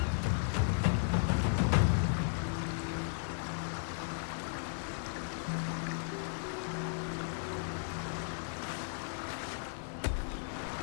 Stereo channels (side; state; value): right; silent; digital silence